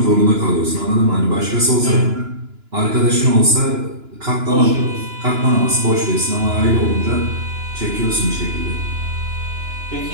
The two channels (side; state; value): left; late; 2.9 ms